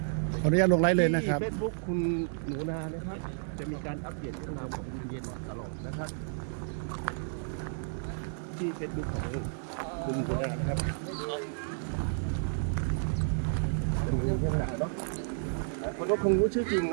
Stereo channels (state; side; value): silent; left; 57 dB below the other